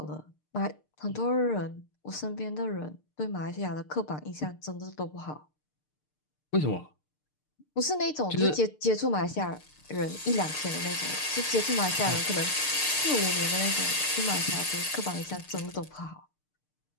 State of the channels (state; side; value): late; right; 6.7 ms